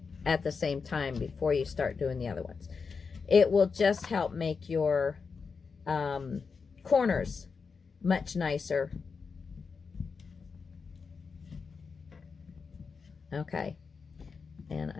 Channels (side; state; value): right; quieter; 5.3 dB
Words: at the same time before you start doing the other ones. It will just help make your corners much nicer. Okay, and